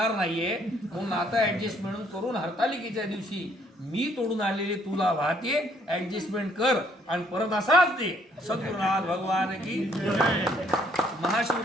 नाहीये, म्हणून आता ऍडजस्टमेंट करून हरतालिकेच्या दिवशी मी तोडून आलेले तुला वाहते, ऍडजस्टमेंट कर आणि परत असाच दे. सद्गुरुनाथ भगवान की जय.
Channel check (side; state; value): both; normal; correlation 0.65